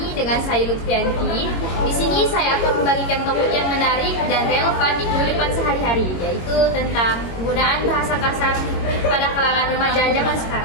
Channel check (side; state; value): right; late; 22 ms